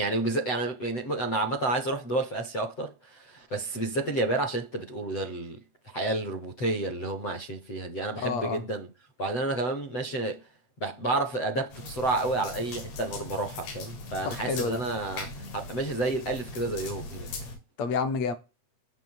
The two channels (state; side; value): late; right; 7.9 ms